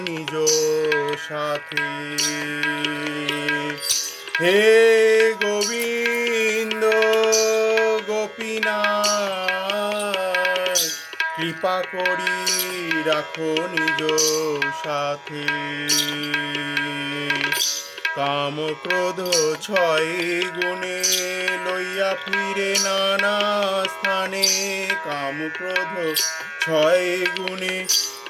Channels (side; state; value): both; identical; correlation 1.00